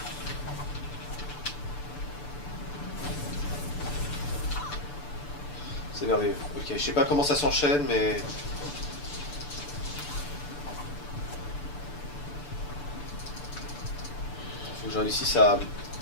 C'est merveilleux. Ok, je sais pas comment ça s'enchaîne, mais... Faut que j'en réussisse à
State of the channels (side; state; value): right; late; 6.9 ms